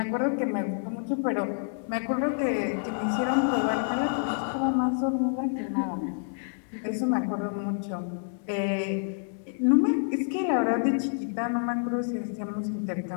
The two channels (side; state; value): right; silent; digital silence